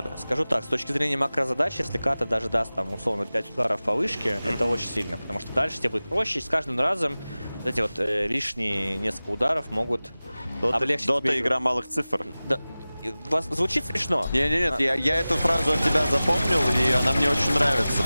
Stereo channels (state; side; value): inverted; both; correlation -0.97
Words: Скажу так, с точки зрения макрозадач, если ката даже даст там условно 5 ударов по вышке, это очень сильно, потому что дальше тебе будет проще, и с каждым разом вот эти вот лишние несколько ударов могут облегчить Дота тебе игра малых цифр. Да. Звучит смешно. Нет, я эту фразу от тебя запомнил, и она мне очень нравится,